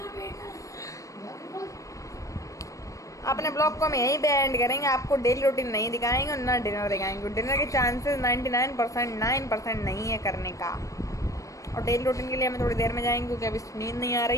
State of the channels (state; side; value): late; right; 0.16 ms